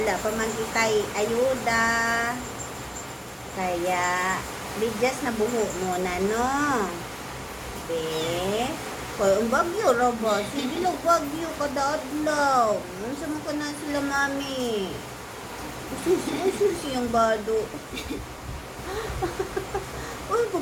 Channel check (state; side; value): identical; both; correlation 1.00